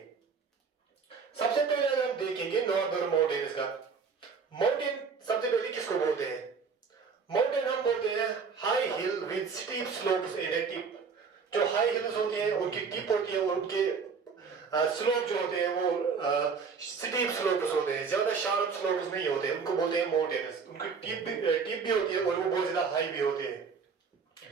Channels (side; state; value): left; quieter; 5.5 dB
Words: सबसे पहले अगर हम देखेंगे नॉर्दर्न माउंटेन्स का, माउंटेन सबसे पहले किसको बोलते हैं? माउंटेन हम बोलते हैं high heel with steep slopes and A tip. जो हाई हिल्स होते हैं उनकी टिप होती है और उनके स्लोप जो होते हैं वो स्टीप स्लोप्स होते हैं, ज्यादा शार्प स्लोप्स नहीं होते, उनको बोलते हैं माउंटेन्स। उनकी टिप भी होती है और वो बहुत ज्यादा हाई भी होते हैं।